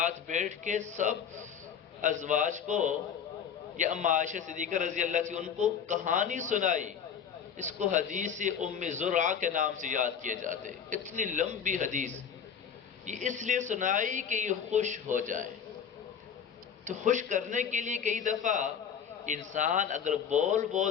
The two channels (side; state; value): right; quieter; 7.6 dB